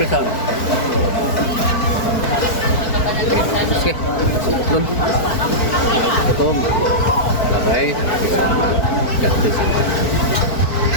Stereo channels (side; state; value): right; late; 4.5 ms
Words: Oke, turun. Potong. Labai. Pisang. Jatuh.